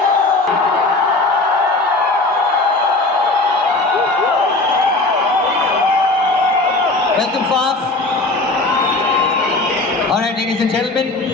Welcome, Faf. Alright, ladies and gentlemen,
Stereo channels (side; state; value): right; quieter; 3.1 dB